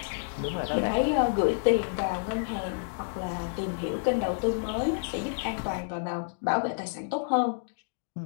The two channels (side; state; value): right; silent; digital silence